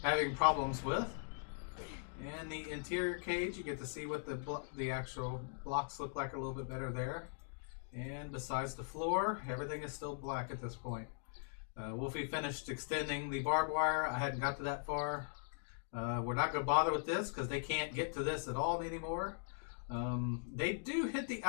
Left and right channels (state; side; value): silent; right; digital silence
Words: having problems with. And the interior cage, you get to see what the actual blocks look like a little bit better there. And besides the floor, everything is still black at this point. Wolfie finished extending the barbed wire. I hadn't got to that far. We're not going to bother with this because they can't get to this at all anymore. They do hit the